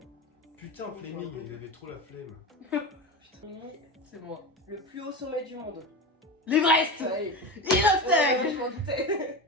Putain Fleming, il avait trop la flemme. Putain, C'est moi. le plus haut sommet du monde. L'Everest! Ouais, Inostec! je m'en doutais.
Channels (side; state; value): both; normal; correlation 0.24